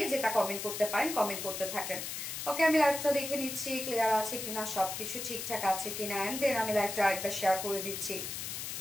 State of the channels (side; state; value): left; noise; hiss, 5 dB below the sound